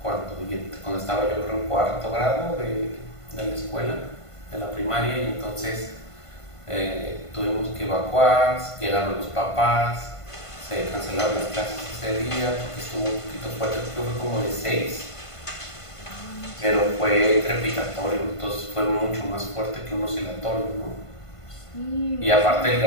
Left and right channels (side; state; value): right; late; 1.5 ms